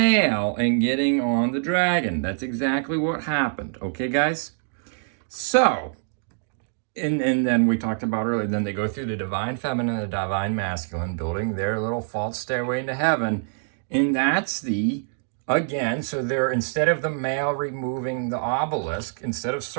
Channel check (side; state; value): left; silent; digital silence